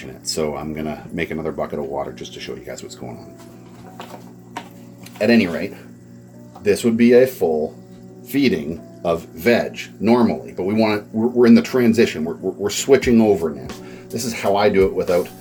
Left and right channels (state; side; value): identical; both; correlation 1.00